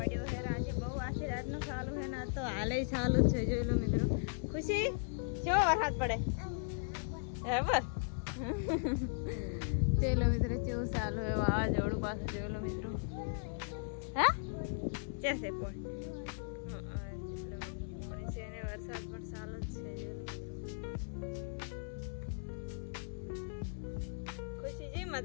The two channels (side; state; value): right; silent; 53 dB below the other